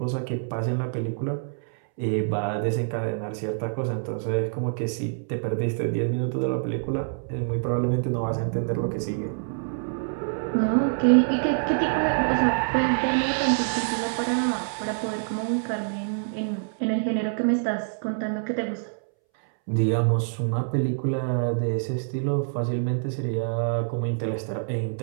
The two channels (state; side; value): silent; left; 61 dB below the other